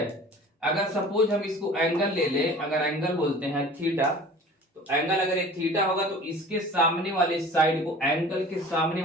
अगर सपोज हम इसको एंगल ले ले, अगर एंगल बोलते हैं थीटा, तो एंगल अगर ये थीटा होगा तो इसके सामने वाले साइड को, एंगल के सामने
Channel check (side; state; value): both; normal; correlation 0.44